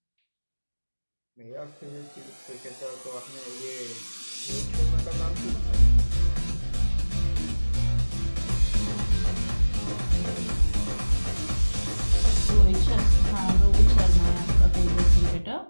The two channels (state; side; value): inverted; both; correlation -1.00